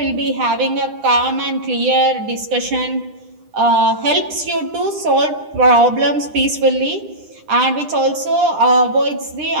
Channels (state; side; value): late; left; 9.9 ms